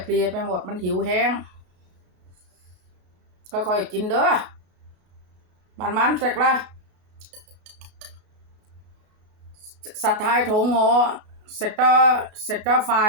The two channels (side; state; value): left; late; 33 ms